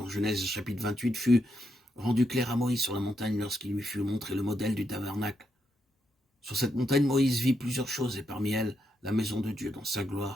Genèse chapitre 28 fut rendu clair à Moïse sur la montagne lorsqu'il lui fut montré le modèle du tabernacle. Sur cette montagne, Moïse vit plusieurs choses et parmi elles, la maison de Dieu dans sa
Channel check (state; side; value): normal; both; correlation 0.81